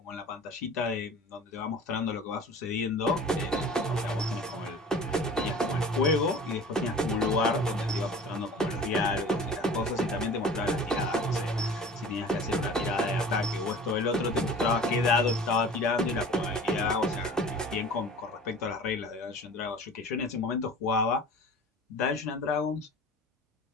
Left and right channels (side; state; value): both; normal; correlation 0.42